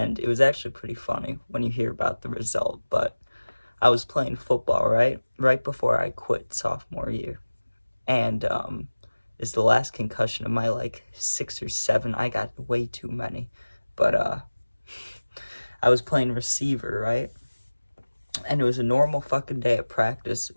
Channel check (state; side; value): inverted; both; correlation -1.00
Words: it was actually pretty funny when you hear about the result, but I was playing football, right? Right before I quit sophomore year. And it's the last concussion of my like 6 or 7. I got way too many. But I was playing receiver, right? And it was a normal fucking day at practice,